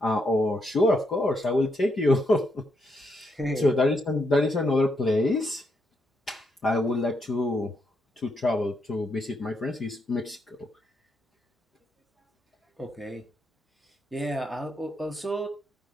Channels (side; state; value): both; normal; correlation 0.79